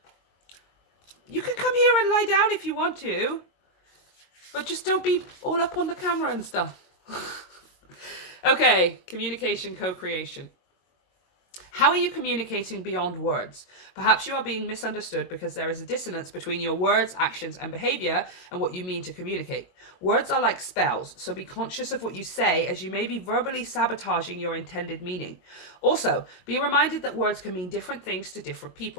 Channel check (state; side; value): late; right; 22 ms